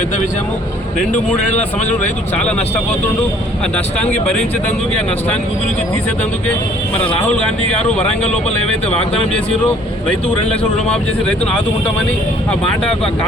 విషయము. 2-3 ఏళ్ల సంవత్సరం రైతు చాలా నష్టపోతుండు. ఆ నష్టానికి భరించేందుకే ఆ నష్టానికి గురించి తీసేందుకే మన రాహుల్ గాంధీ గారు వరంగల్ లోపల ఏవైతే వాగ్దానం చేసిరో రైతుకు 2 లక్షలు రుణమాఫీ చేసి రైతును ఆదుకుంటామని ఆ మాట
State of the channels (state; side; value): normal; both; correlation 0.58